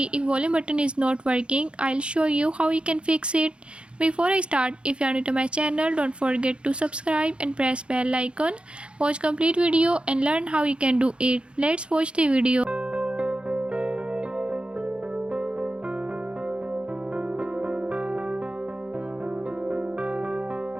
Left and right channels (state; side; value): late; left; 0.057 ms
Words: if volume button is not working, I'll show you how you can fix it. Before I start, if you are new to my channel, don't forget to subscribe and press bell icon. Watch complete video and learn how you can do it. Let's watch the video.